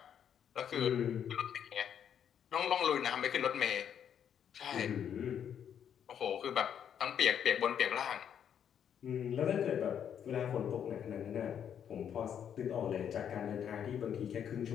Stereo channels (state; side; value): quieter; right; 8.7 dB